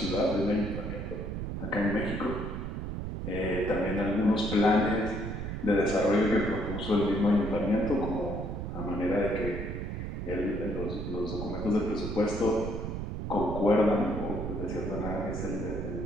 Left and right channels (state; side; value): noise; right; rumble, 4 dB below the sound